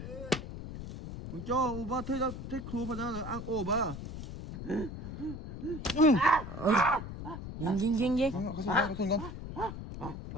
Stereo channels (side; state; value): left; noise; rumble, 9 dB below the sound